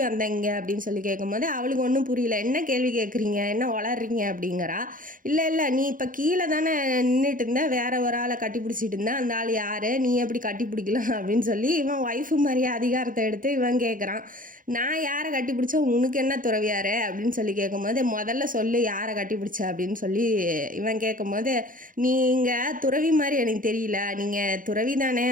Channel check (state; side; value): late; left; 0.40 ms